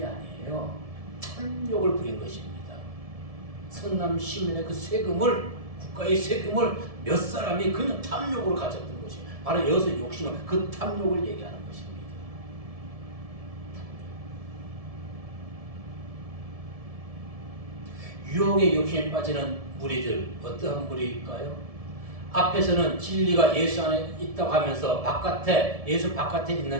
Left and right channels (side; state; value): left; late; 1.7 ms